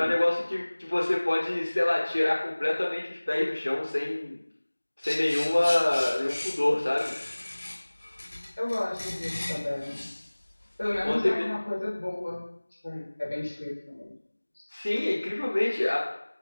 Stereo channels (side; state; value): both; inverted; correlation -1.00